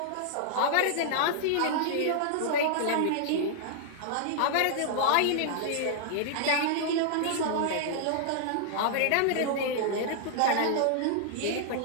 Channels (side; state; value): both; different; correlation -0.01